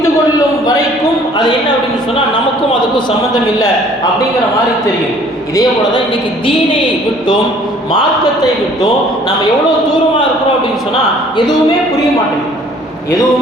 கொள்ளும் வரைக்கும் அது என்ன அப்படின்னு சொன்னால் நமக்கும் அதுக்கும் சம்மந்தம் இல்லை அப்படிங்கிற மாதிரி தெரியும். இதே போல தான் இன்னைக்கு தீனை விட்டும் மார்க்கத்தை விட்டும் நம்ம எவ்வளோ தூரமாக இருக்கிறோம் அப்படின்னு சொன்னால் எதுவுமே புரிய மாட்டேங்குது.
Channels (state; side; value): normal; both; correlation 0.55